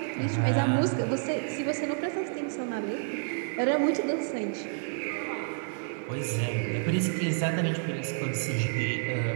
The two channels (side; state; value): left; silent; 58 dB below the other